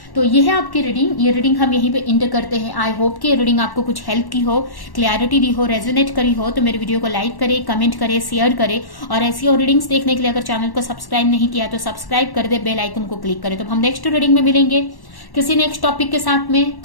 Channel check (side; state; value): right; late; 1.1 ms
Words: तो ये है आपकी रीडिंग। ये रीडिंग हम यहीं पे एंड करते हैं। आई होप कि ये रीडिंग आपको कुछ हेल्प की हो, क्लैरिटी दी हो, रेजोनेट करी हो। तो मेरे वीडियो को लाइक करें, कमेंट करें, शेयर करें, और ऐसी और रीडिंग्स देखने के लिए अगर चैनल को सब्सक्राइब नहीं किया तो सब्सक्राइब कर दे, बेल आइकन को क्लिक करें। तो हम नेक्स्ट रीडिंग में मिलेंगे किसी नेक्स्ट टॉपिक के साथ में।